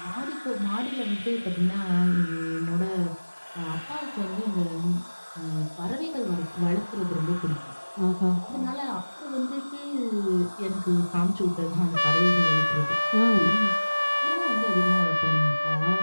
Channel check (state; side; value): inverted; both; correlation -1.00